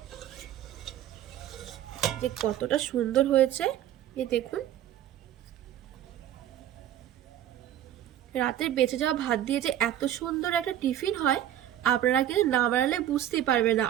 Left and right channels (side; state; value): left; quieter; 11.7 dB